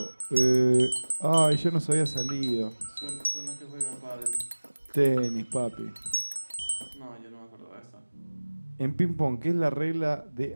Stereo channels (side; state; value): both; inverted; correlation -1.00